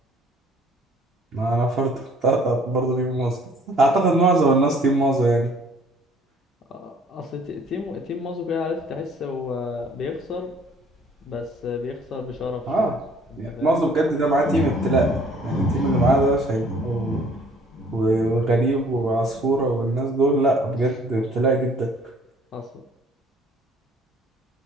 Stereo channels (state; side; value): normal; both; correlation 0.57